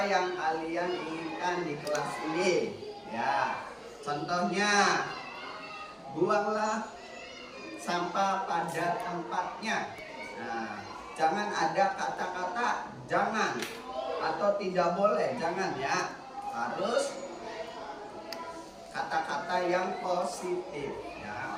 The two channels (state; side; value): identical; both; correlation 1.00